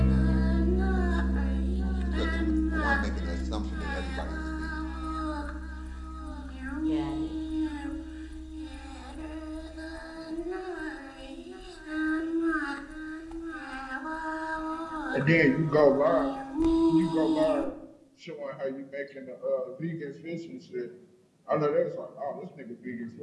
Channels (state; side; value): identical; both; correlation 1.00